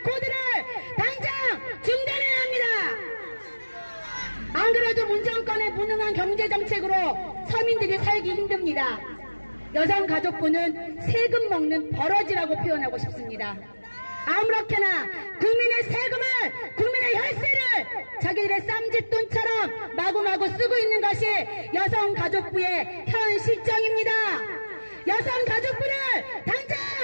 코드를 당장 중단해야 합니다. 안 그래도 문정권의 무능한 경제정책으로 서민들이 살기 힘듭니다. 여성가족부는 세금 먹는 버러지라고 표현하고 싶습니다. 아무렇게나 국민의 세금을, 국민의 혈세를 자기들의 쌈짓돈처럼 마구마구 쓰고 있는 것이 여성가족부의 현 실정입니다. 여성가족부를 당장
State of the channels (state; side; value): inverted; both; correlation -1.00